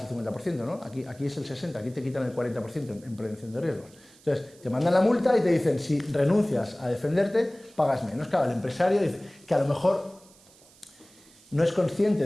el 50%, ¿no? Aquí es el 60%, aquí te quitan el 40% en prevención de riesgos. Entonces, te mandan la multa y te dicen, si renuncias a defenderte, pagas menos. Claro, el empresario dice que a lo mejor no es consciente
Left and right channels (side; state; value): right; noise; hiss, 26 dB below the sound